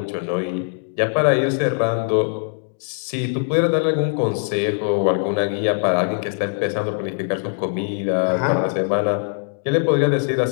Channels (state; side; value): silent; right; digital silence